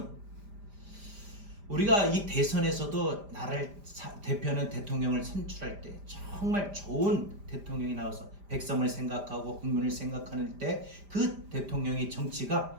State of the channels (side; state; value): left; late; 5.0 ms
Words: 우리가 이 대선에서도 나라를 대표하는 대통령을 선출할 때 정말 좋은 대통령이 나와서 백성을 생각하고 국민을 생각하는 때 그 대통령의 정치가